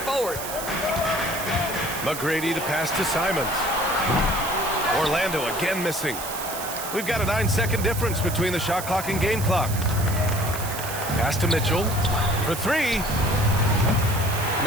McGrady the pass to Simons. Orlando again missing. We've got a 9-second difference between the shot clock and game clock. Pass to Mitchell for three.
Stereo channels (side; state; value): right; noise; hiss, 8 dB below the sound